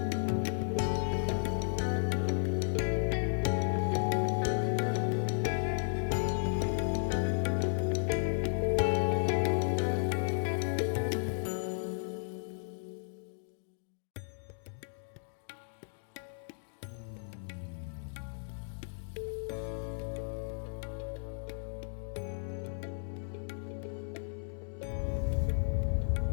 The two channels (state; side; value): silent; right; digital silence